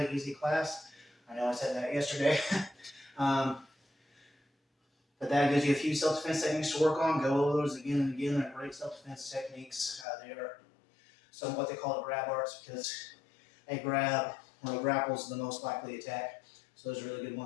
easy class. I know I said that yesterday. But that gives you a few self-defense techniques to work on. Go over those again and again. They're great self-defense techniques. They are some of what they call it grab arts, because a grab or a grapple is the most likely attack. So those are really good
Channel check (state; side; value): drops out; right; at 10.1 s